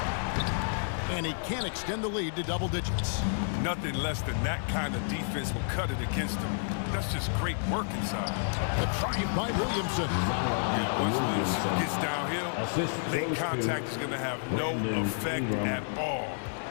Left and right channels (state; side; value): silent; right; 58 dB below the other